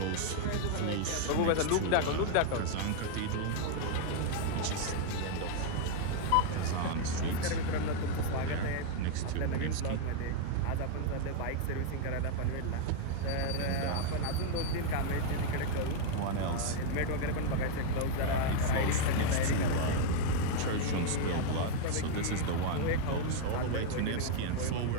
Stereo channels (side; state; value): both; different; correlation 0.00